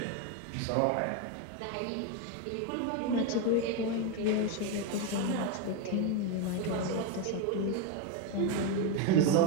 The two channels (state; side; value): different; both; correlation 0.02